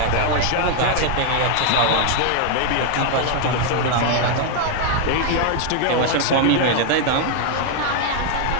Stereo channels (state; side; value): different; both; correlation 0.00